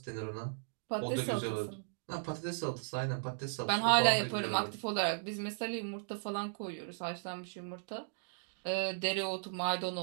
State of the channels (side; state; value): left; silent; digital silence